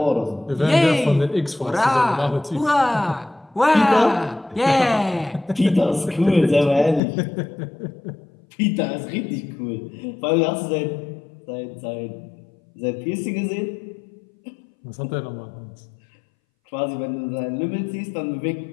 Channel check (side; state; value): right; drops out; at 7.0 s